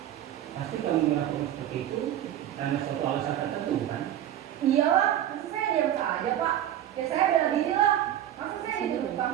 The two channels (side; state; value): left; quieter; 11.7 dB